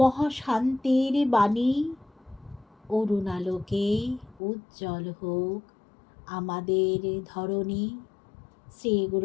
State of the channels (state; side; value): drops out; right; at 4.4 s